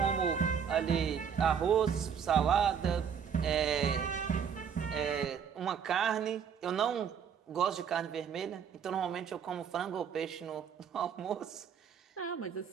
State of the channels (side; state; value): left; quieter; 7.5 dB